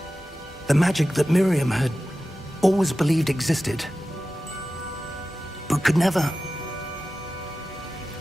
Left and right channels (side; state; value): both; normal; correlation 0.94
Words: The magic that Miriam had always believed existed, but could never.